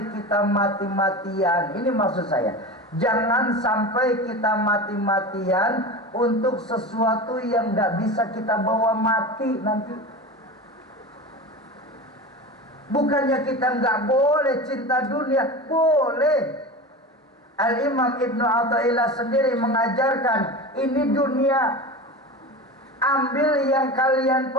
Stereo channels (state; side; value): normal; both; correlation 0.29